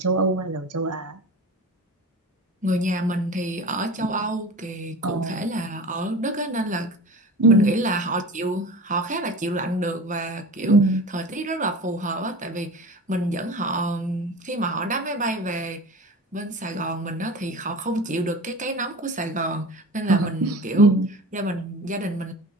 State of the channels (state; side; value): normal; both; correlation 0.34